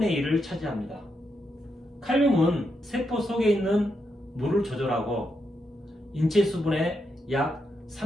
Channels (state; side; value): normal; both; correlation 0.83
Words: 1을 차지합니다. 칼륨은 세포 속에 있는 물을 조절하고 인체 수분의 약